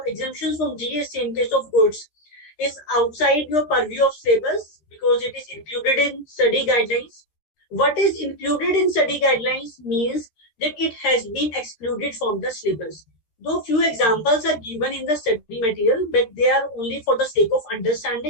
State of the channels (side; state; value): right; late; 13 ms